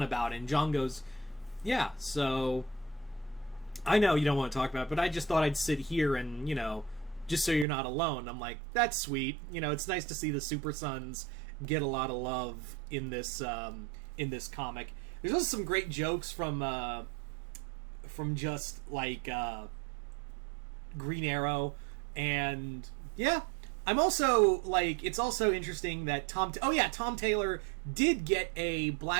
about it, and John goes, yeah, so I know you don't want to talk about it, but I just thought I'd sit here and, just so you're not alone. I'm like, that's sweet. It's nice to see the Super Sons get a lot of love in this comic. There's also some great jokes from just, like, Green Arrow, and I'm also, like, it's also interesting that Tom Taylor did get a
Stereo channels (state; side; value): drops out; left; at 7.7 s